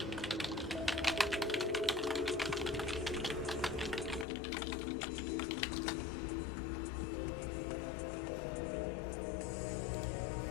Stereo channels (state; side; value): drops out; right; at 4.2 s